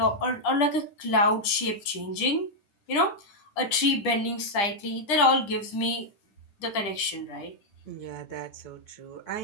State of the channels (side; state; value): right; late; 10 ms